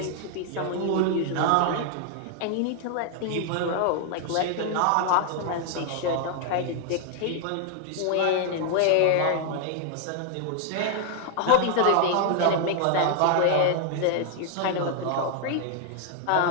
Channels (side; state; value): both; different; correlation 0.00